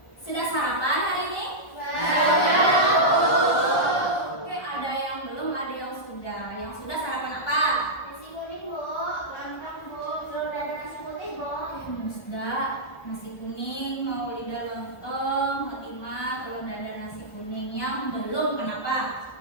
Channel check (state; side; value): late; right; 1.4 ms